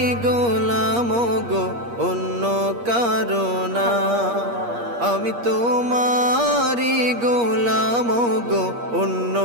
গোলাম গো, অন্য কারো না। আমি তোমারি গোলাম গো, অন্য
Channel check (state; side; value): late; left; 8.5 ms